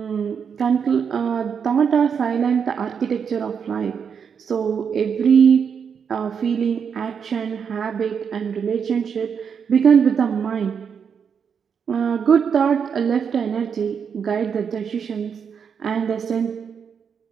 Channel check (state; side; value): quieter; left; 6.8 dB